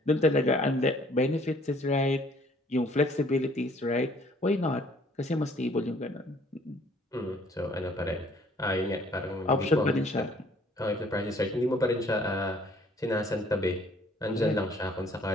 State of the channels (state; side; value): normal; both; correlation 0.59